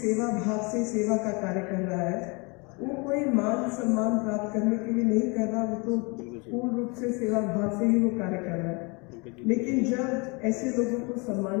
भाव से सेवा का कार्य कर रहा है, वो कोई मान सम्मान प्राप्त करने के लिए नहीं कर रहा, वो तो पूर्ण रूप से सेवा भाव से ही वो कार्य कर रहा है। लेकिन जब ऐसे लोगों को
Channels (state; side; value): quieter; right; 29.9 dB